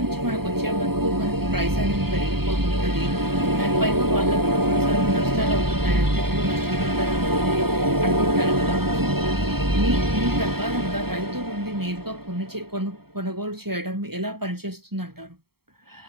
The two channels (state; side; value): late; left; 0.95 ms